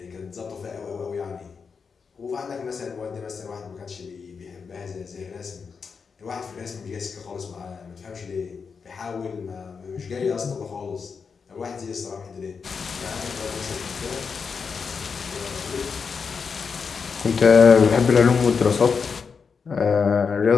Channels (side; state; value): right; quieter; 5.6 dB